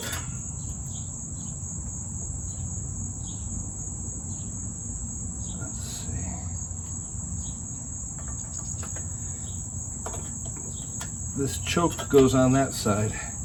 this choke goes on that side,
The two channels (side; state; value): both; identical; correlation 1.00